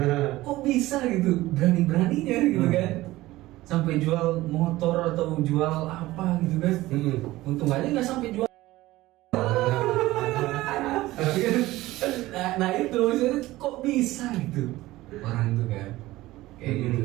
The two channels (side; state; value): left; quieter; 17.6 dB